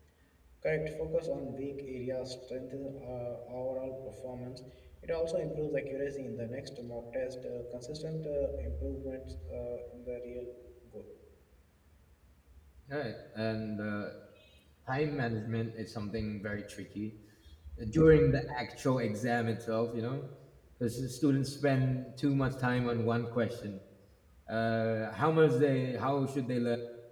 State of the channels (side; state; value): both; identical; correlation 1.00